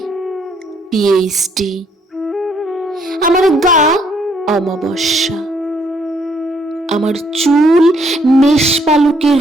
PhD। আমার গা অমাবস্যা, আমার চুল মেষপালকের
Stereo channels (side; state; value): both; normal; correlation 0.68